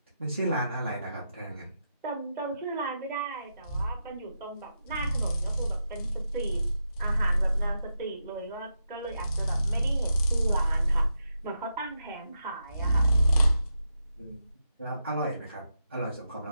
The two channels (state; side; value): inverted; both; correlation -0.86